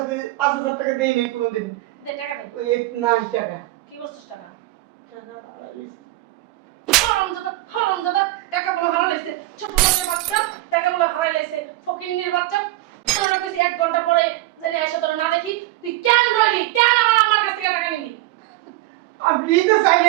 5,000 টাকা দেই নাই কোনোদিন। দে টাকা দে। ওই নাই টাকা। কি করছস টাকা? টাকা আড়াইছি। হারামজাদা, টাকা বলে হারা লাইছে। ছোট লোকের বাচ্চা, টাকা বলে হারাই লাইছে। ফকিন্নির বাচ্চা, তোর না কইছি 1 ঘন্টা পরে জানি আইসা তোর না দেখি। তুই কেন রইলি? কেন আমার আম্মার কাছ থেকে টাকা নিলি? আমি নিতে চাই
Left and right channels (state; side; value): quieter; left; 18.1 dB